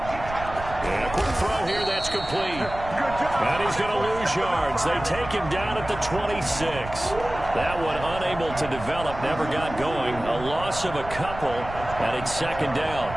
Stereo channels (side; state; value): right; noise; rumble, 12 dB below the sound